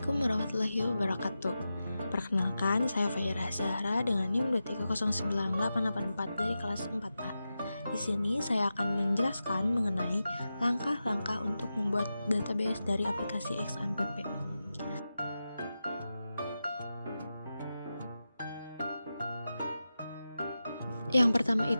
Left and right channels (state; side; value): inverted; both; correlation -0.92